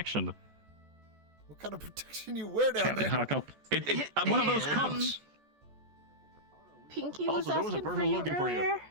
What kind of protection you wear down there? One of those cups. Pinky was Also, there was a asking for person you looking for you. earlier.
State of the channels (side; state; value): left; late; 14 ms